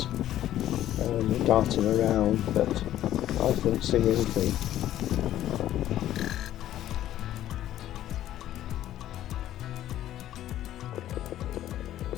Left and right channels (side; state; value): right; quieter; 12.7 dB